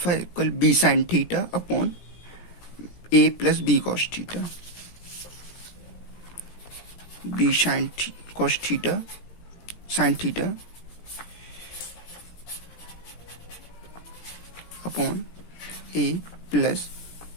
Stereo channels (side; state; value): right; late; 17 ms